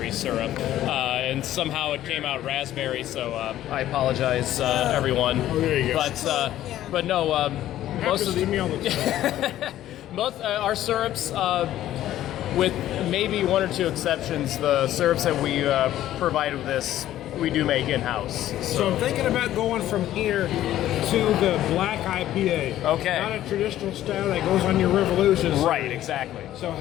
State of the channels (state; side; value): quieter; right; 13.1 dB